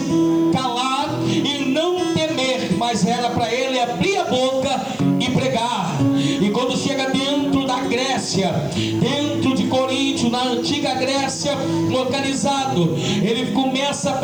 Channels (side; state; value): left; noise; hiss, 29 dB below the sound